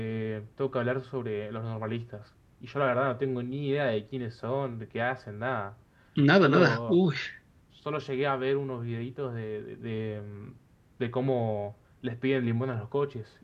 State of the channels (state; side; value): identical; both; correlation 1.00